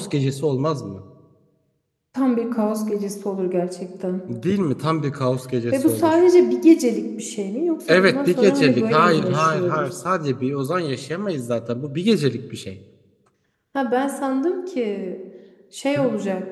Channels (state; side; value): identical; both; correlation 1.00